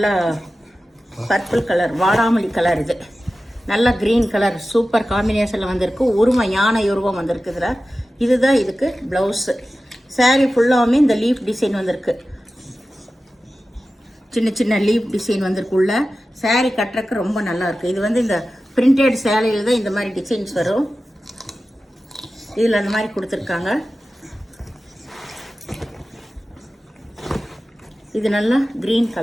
பர்பிள் கலர், வாடாமல்லி கலர். இது நல்லா க்ரீன் கலர் சூப்பர் காம்பினேஷனில் வந்திருக்கு. உருவம் யானை உருவம் வந்திருக்கு இதில். இதுதான் இதுக்கு ப்ளவுஸு. சாரீ ஃபுல்லாகவுமே இந்த லீஃப் டிசைன் வந்திருக்கு. சின்ன சின்ன லீஃப் டிசைன் வந்திருக்கு உள்ள. சாரீ கட்டுறதுக்கு ரொம்ப நல்லாயிருக்கு. இது இந்த பிரிண்டட் சேலையில் தான் இந்த மாதிரி டிசைன்ஸ் வரும். இதில் அந்த மாதிரி கொடுத்துருக்காங்க. இது நல்லா க்ரீன்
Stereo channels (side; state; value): both; normal; correlation 0.94